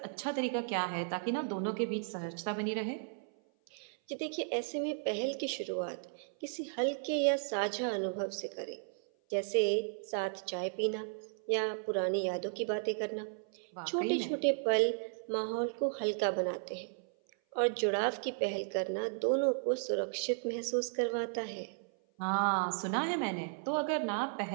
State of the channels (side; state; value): left; silent; 55 dB below the other